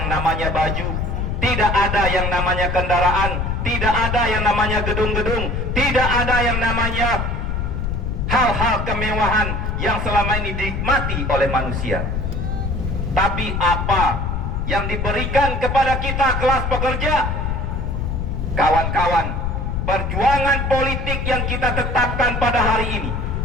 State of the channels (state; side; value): noise; left; rumble, 1 dB below the sound